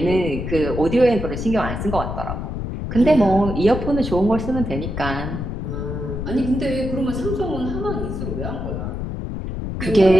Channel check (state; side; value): noise; left; rumble, 5 dB below the sound